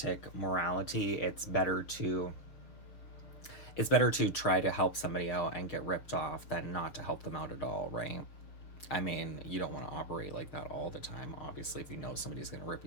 morality. It's better to try to help somebody out and get ripped off than not to help them out at all, right? I mean, you don't want to operate like that all the time. Obviously, if you know somebody's going to rip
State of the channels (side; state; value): right; late; 6.5 ms